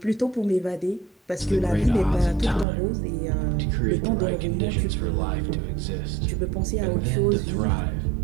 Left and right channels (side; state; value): left; drops out; at 2.7 s